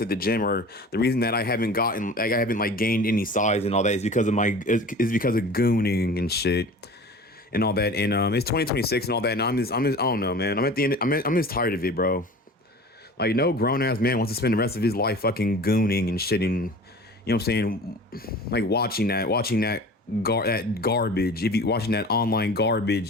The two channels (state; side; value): normal; both; correlation 0.40